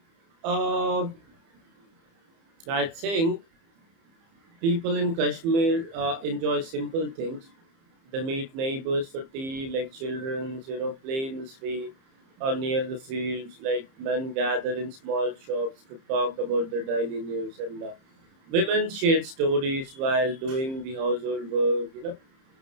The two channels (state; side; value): late; left; 30 ms